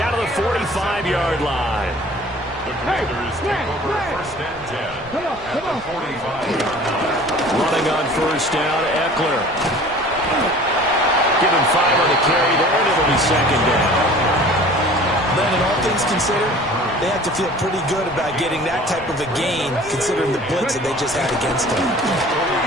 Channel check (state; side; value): noise; right; rumble, 21 dB below the sound